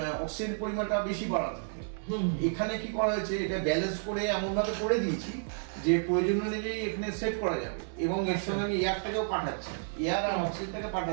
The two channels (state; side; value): silent; left; digital silence